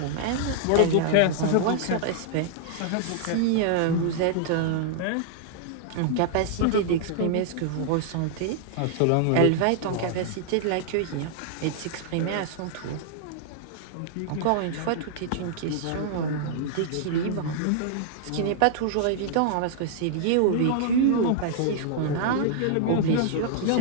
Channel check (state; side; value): different; both; correlation -0.01